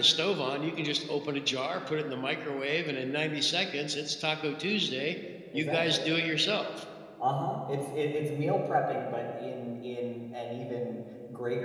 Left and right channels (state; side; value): identical; both; correlation 1.00